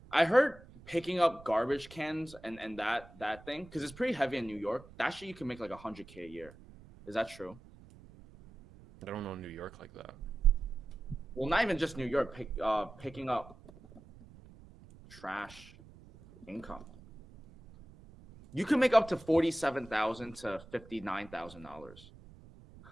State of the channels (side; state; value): right; noise; rumble, 21 dB below the sound